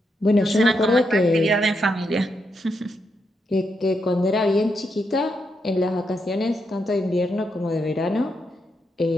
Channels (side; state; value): both; normal; correlation 0.82